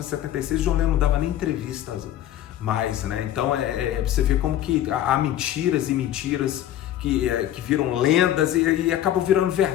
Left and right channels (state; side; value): quieter; right; 12.0 dB